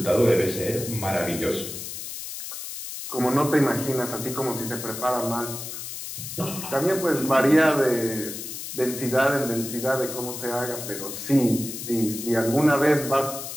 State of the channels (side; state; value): left; noise; hiss, 8 dB below the sound